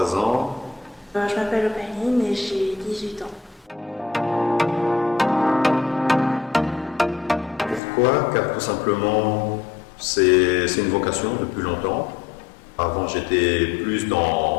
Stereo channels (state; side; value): drops out; right; at 7.8 s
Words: ans. Je m'appelle Opaline et j'ai 18 ans. Pourquoi? Car tout simplement, c'est une vocation depuis longtemps. Avant, j'étais plus